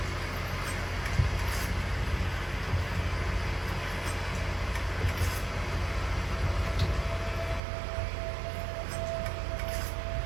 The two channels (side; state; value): left; drops out; at 7.6 s